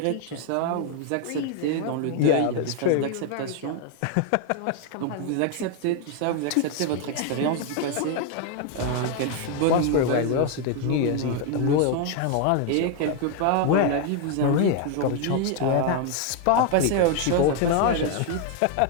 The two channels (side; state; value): both; different; correlation 0.01